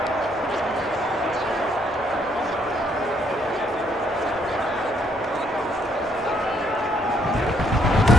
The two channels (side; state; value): both; normal; correlation 0.70